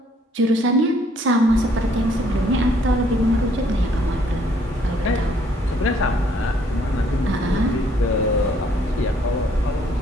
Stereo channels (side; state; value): both; normal; correlation 0.64